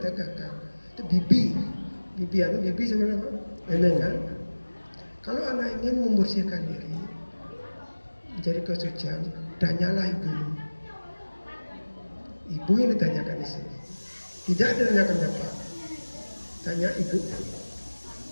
kakak. Itu bibi sebenarnya apa? Memang kan? Kalau anak ingin membersihkan diri, menjadi kesucian, tanyalah ibumu. Ibu yang ditanyakan di sini. Tidak ditanyakan bapak. Tanya ibu.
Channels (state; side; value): inverted; both; correlation -1.00